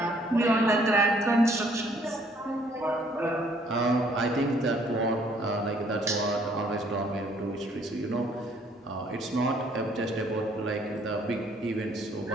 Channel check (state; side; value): normal; both; correlation 0.63